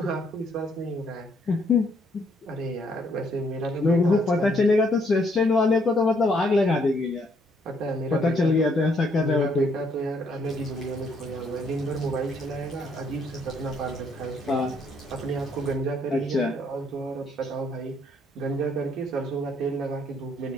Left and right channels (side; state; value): both; normal; correlation 0.69